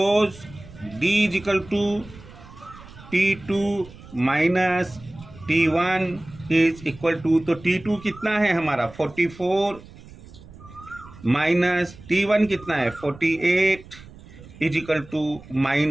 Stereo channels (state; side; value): noise; right; rumble, 19 dB below the sound